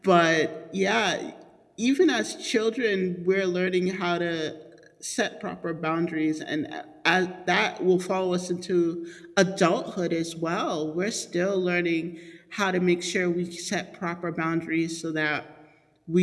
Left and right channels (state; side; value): identical; both; correlation 1.00